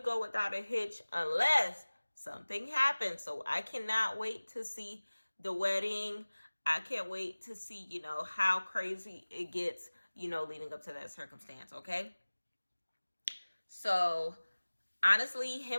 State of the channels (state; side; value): inverted; both; correlation -1.00